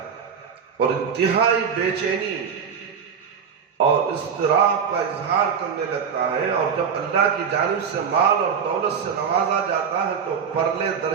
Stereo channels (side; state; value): left; quieter; 6.9 dB